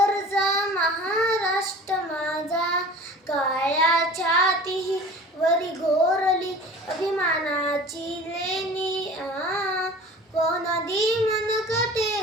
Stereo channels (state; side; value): normal; both; correlation 0.41